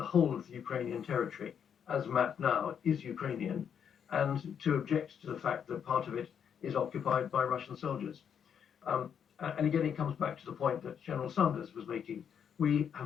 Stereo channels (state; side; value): quieter; right; 7.9 dB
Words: whole of the Ukrainian territory, as mapped now, is Ukrainian, and to object to the fact that part of it is occupied by Russian soldiers. And again, it comes back to the point that General Sanders was making. We